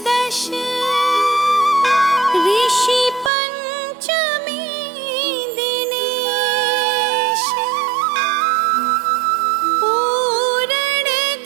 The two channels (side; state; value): left; drops out; at 3.3 s